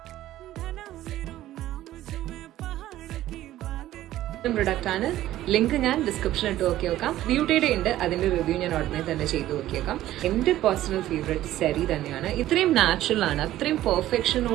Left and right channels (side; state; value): left; quieter; 14.1 dB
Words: പ്രൊഡക്റ്റ് ആണ്. ലിങ്ക് ഞാൻ ഡിസ്ക്രിപ്ഷനിൽ ഇട്ട് നോക്കി നോക്കാം. ബ്യൂട്ടിയുടെ ഉണ്ട്, അതിന്റെ റിവ്യൂ ഞാൻ ഉടനെ തന്നെ ചെയ്ത് നോക്കിയേക്കാം. എന്റെ പേഴ്സണൽ ഫേവറേറ്റ് സെറി തന്നെയാണ്. ഇത്രയും നാച്ചുറൽ ആണ്, അത്രയും